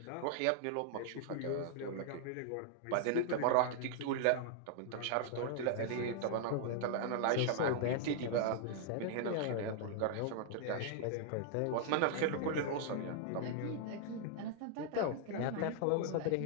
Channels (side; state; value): both; different; correlation -0.01